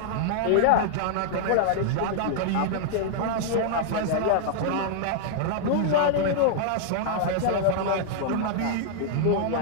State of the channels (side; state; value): both; different; correlation -0.01